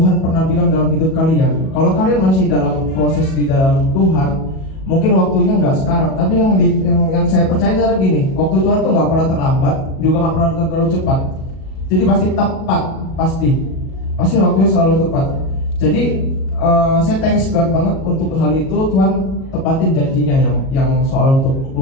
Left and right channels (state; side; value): late; right; 37 ms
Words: pernah bilang dalam hidup kalian. Kalau kalian masih dalam proses di dalam Tuhan, mungkin waktunya nggak sekarang. Tapi yang saya percaya adalah gini, waktu Tuhan tuh nggak pernah terlambat, juga nggak pernah terlalu cepat. Jadi pasti tepat, pasti waktunya selalu tepat. Jadi saya thanks God banget untuk hal itu. Tuhan tepatin janjinya yang soal untuk